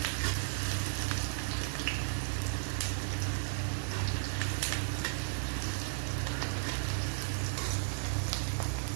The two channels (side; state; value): left; silent; digital silence